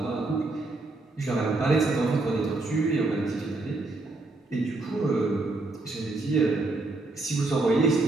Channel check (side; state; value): left; quieter; 3.2 dB